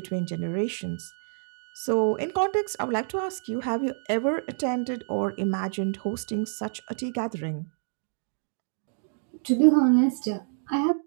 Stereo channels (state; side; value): silent; left; digital silence